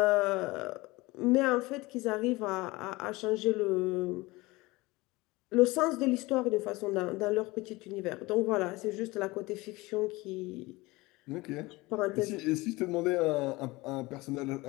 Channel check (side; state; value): right; quieter; 21.8 dB